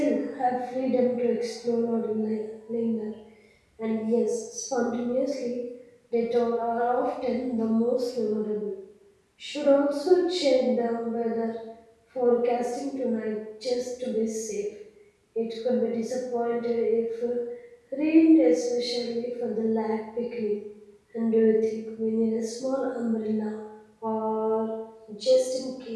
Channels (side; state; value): both; identical; correlation 1.00